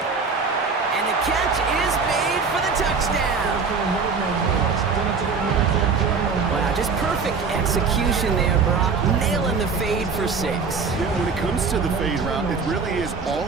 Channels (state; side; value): quieter; left; 5.0 dB